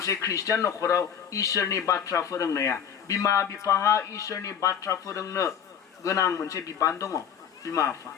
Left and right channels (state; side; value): quieter; right; 8.3 dB